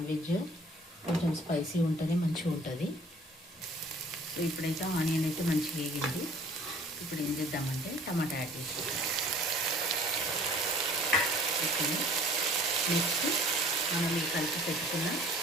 వెజ్ కొంచెం స్పైసీ ఉంటుంది, మంచిగా ఉంటుంది. సో ఇప్పుడైతే ఆనియన్ అయితే మంచిగా వేగింది. ఇప్పుడు ఏం చేద్దామంటే టమాటా యాడ్ చేసుకుంటాం. ఓకే, నెక్స్ట్ మనం ఈ కలిపి పెట్టుకున్న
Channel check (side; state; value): both; normal; correlation 0.52